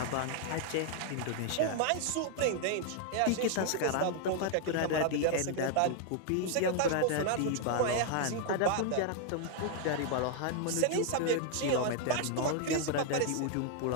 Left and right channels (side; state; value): both; different; correlation 0.00